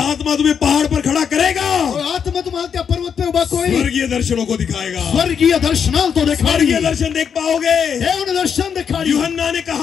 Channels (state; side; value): quieter; right; 7.2 dB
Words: तुम्हें पहाड़ पर खड़ा करेगा और आत्मा तुम्हाला त्या पर्वत पे उभा कोई स्वर्गीय दर्शनों को दिखाएगा। स्वर्गीय दर्शनाल तो दिखाई। स्वर्गीय दर्शन देख पाओगे। देव ने दर्शन दिखाई। यूहन्ना ने